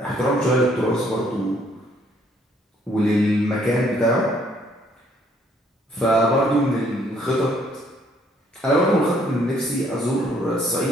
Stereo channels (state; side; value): normal; both; correlation 0.65